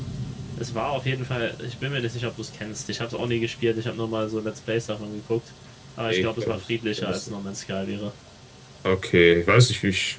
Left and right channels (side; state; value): both; identical; correlation 1.00